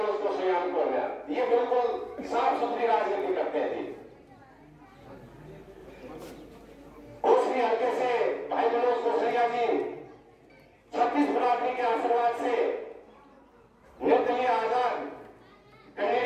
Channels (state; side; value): identical; both; correlation 1.00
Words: कौशल्या को ये बिल्कुल साफ सुथरी राजनीति करते थे। कोसली हल्के से भाई मनोज कौशल्या जी 36 बरादरी के आशीर्वाद से निर्दलीय आजाद